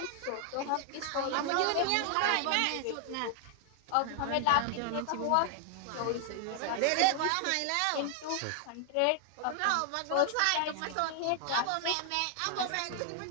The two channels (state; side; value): different; both; correlation 0.00